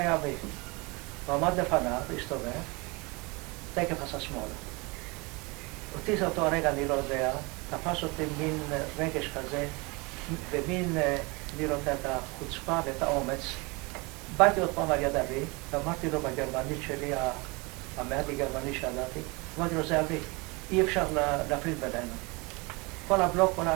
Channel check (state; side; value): quieter; left; 27.1 dB